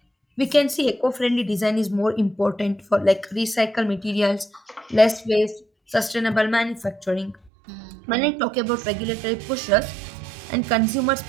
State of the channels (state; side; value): drops out; left; at 7.5 s